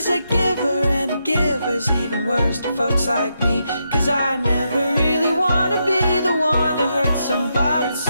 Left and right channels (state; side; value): inverted; both; correlation -0.83